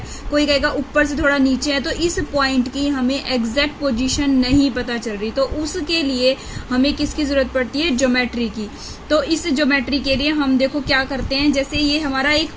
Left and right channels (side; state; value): both; identical; correlation 1.00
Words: कोई कहेगा ऊपर से थोड़ा नीचे है। तो इस पॉइंट की हमें एग्जैक्ट पोजीशन नहीं पता चल रही, तो उसके लिए हमें किसकी जरूरत पड़ती है, ज्योमेट्री की। तो इस ज्योमेट्री के लिए हम देखो क्या करते हैं, जैसे ये हमारा एक